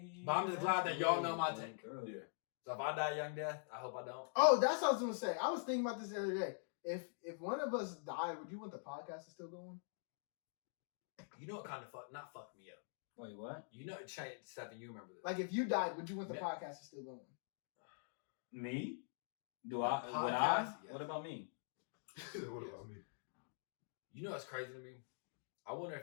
But I'm just glad that y'all know my take. Yeah. So if I die young death, I hope I don't. Oh, that's what I was gonna say. I was thinking about this the other day. If one of us died, would you want the podcast to still go on? You know what kind of not fuck me up. Wait, what? You know, Stephen, you remember this. Like if you died, would you want the Yeah. podcast to still go on? Me? The Would I? podcast, yes. What about me? What about me? You know what's crazy to me? I wonder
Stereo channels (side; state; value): right; silent; digital silence